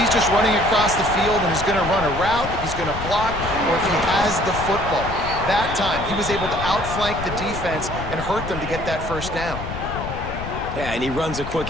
he's just running across the field and is going to run a route, if he's going to block, or if he has the football. That time, he was able to outflank the defense and hurt them to get that first down. Yeah, and he runs a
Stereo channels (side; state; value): left; noise; rumble, 8 dB below the sound